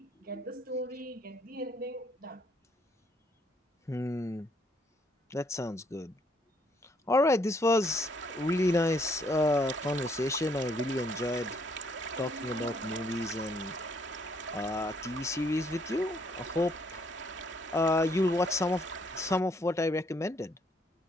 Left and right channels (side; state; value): both; normal; correlation 0.68